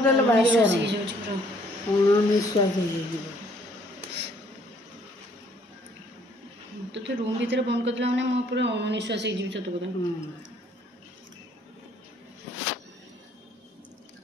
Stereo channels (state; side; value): normal; both; correlation 0.63